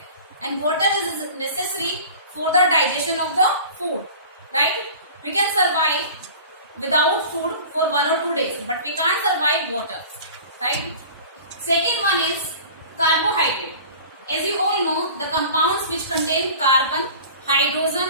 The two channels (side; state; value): both; inverted; correlation -0.40